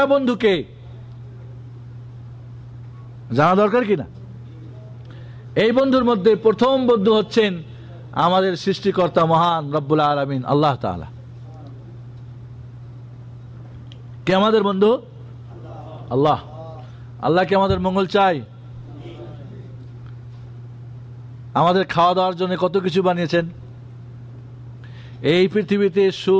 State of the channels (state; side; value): identical; both; correlation 1.00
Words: বন্ধুকে জানা দরকার কিনা? এই বন্ধুর মধ্যে প্রথম বন্ধু হচ্ছেন আমাদের সৃষ্টিকর্তা মহান রব্বুল আলামিন আল্লাহ তাআলা। কে আমাদের বন্ধু? আল্লাহ। আল্লাহ কি আমাদের মঙ্গল চাই? আমাদের খাওয়া দাওয়ার জন্য কত কিছু বানিয়েছেন। এই পৃথিবীতে